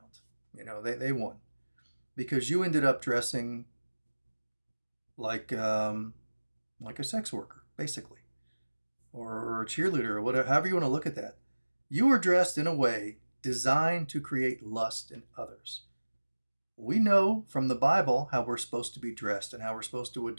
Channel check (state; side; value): inverted; both; correlation -1.00